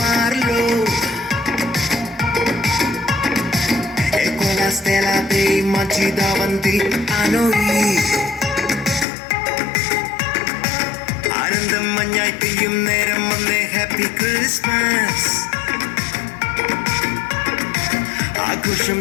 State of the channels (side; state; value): right; drops out; at 9.1 s